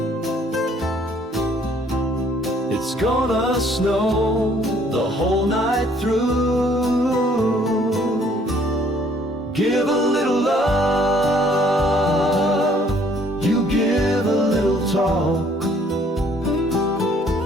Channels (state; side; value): normal; both; correlation 0.61